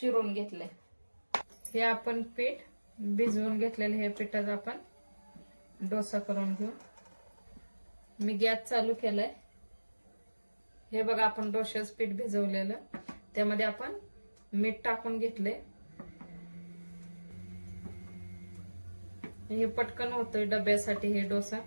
घेतले। हे आपण पीठ भिजवून घेतलेले, हे पिठाचा आपण डोसा करून घेऊ। मी गॅस चालू केलाय। हे बघा, आपण डोशाचं पीठ भिजवलेलं, त्यामध्ये आपण मीठ टाकून घेतले। हे पटकन होतोय डब्यासाठी हे डोसा।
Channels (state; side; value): inverted; both; correlation -1.00